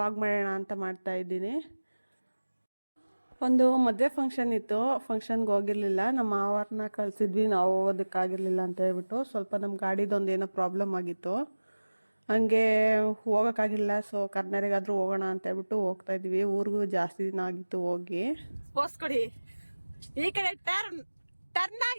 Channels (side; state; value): both; inverted; correlation -1.00